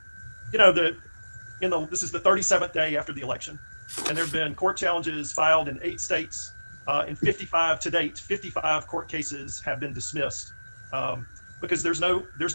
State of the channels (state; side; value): inverted; both; correlation -1.00